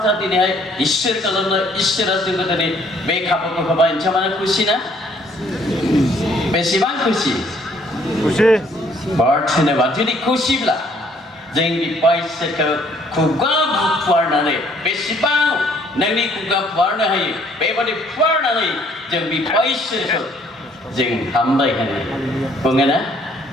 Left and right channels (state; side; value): normal; both; correlation 0.62